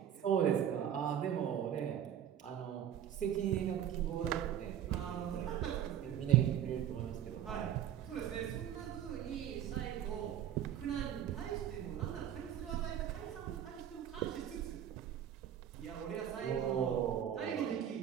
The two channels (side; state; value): left; quieter; 10.2 dB